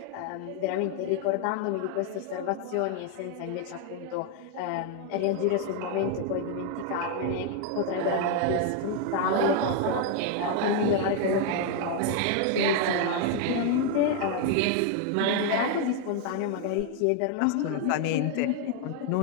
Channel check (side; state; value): both; different; correlation 0.01